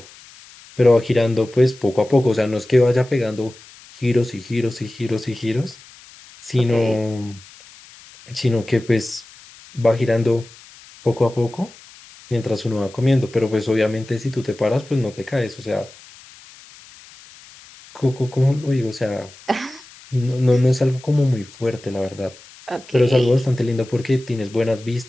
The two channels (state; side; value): noise; left; hiss, 22 dB below the sound